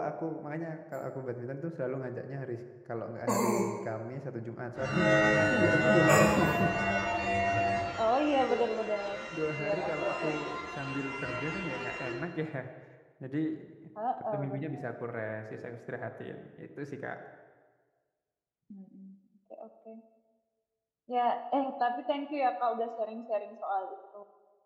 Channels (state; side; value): identical; both; correlation 1.00